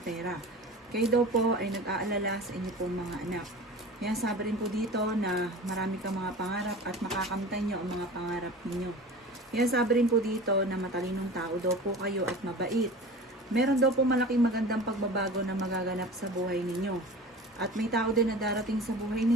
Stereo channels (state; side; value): normal; both; correlation 0.37